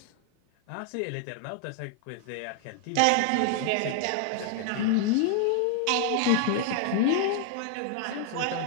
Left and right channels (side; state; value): both; different; correlation 0.00